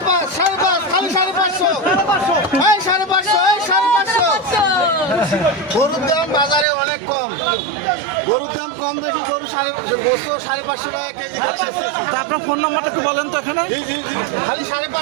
খালি 550 এই 550 এই 550 গরুর দাম বাজারে অনেক কম। গরুর দাম কম দেখি গরু 550 টাকা কেজি খালি। তা আপনার ফোন নাম্বারটা একটু বলেন তো এখানে। জি জি জি খালি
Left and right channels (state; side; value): drops out; left; at 6.7 s